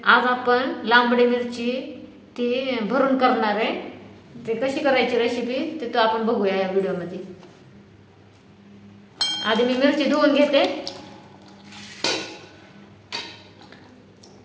आज आपण लांबडी मिरची ती भरून करणार आहे। ते कशी करायची रेसिपी ते तो आपण बघूया या व्हिडिओमध्ये। आधी मी मिरची धुवून घेते।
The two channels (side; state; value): both; identical; correlation 1.00